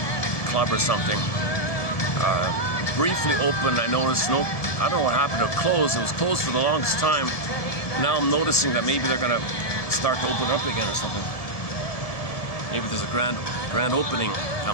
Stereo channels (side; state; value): right; late; 1.7 ms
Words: club or something. Briefly opened. I noticed. Nope. I don't know what happened. It closed. It was closed for the longest time. Now I'm noticing that maybe they're gonna start to open up again or something. Maybe there's a grand opening